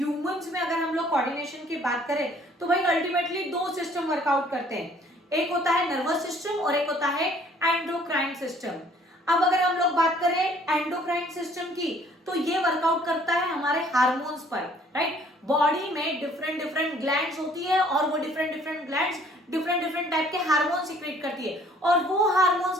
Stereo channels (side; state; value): both; normal; correlation 0.58